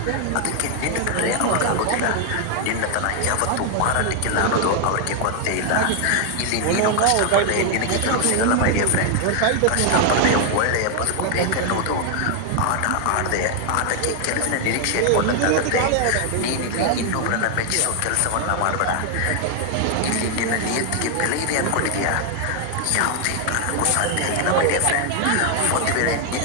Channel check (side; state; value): both; different; correlation 0.00